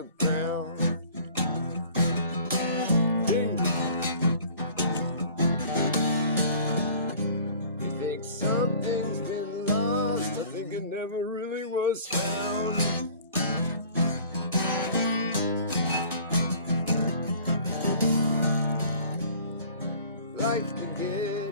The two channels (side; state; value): both; inverted; correlation -0.49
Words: ground. Something's been lost. I think it never really was found. Life can